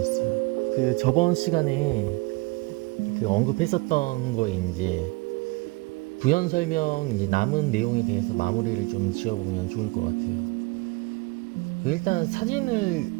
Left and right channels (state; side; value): quieter; left; 25.0 dB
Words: 그 저번 시간에 그 언급했었던 거에 이제 부연 설명 이제 남은 내용에 대해서 마무리를 좀 지어보면 좋을 것 같아요. 일단 사진을